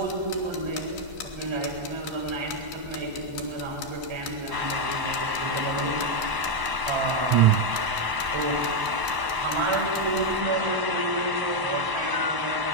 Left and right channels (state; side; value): late; left; 1.0 ms